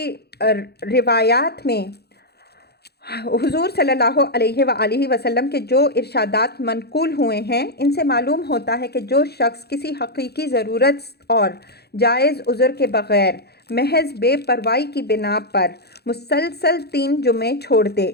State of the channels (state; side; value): late; right; 0.47 ms